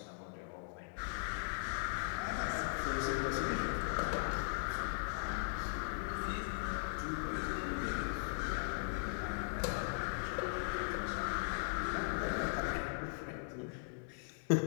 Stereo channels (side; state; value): right; silent; digital silence